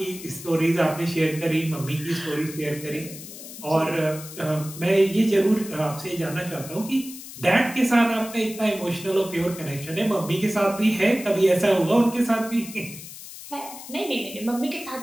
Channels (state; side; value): noise; left; hiss, 13 dB below the sound